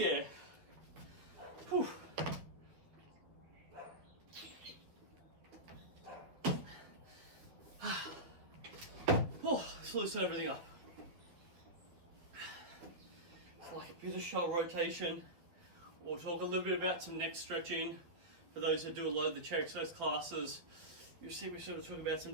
Whew. Oh, let's loosen everything up. It's like a bit of shoulder rotation. We'll talk a little bit about some neck stretching. For those who do a lot of the chair exercise classes, you see we sort of talk about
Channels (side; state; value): left; late; 12 ms